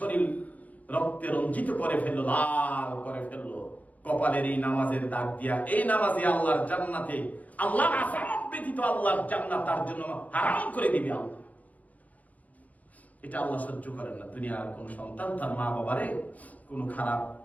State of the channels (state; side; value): late; right; 0.075 ms